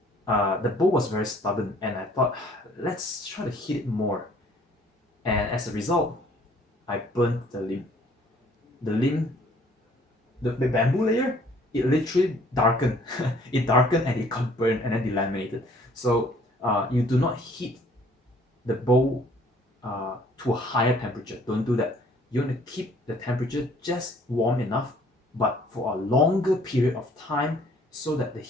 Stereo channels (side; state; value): both; normal; correlation 0.59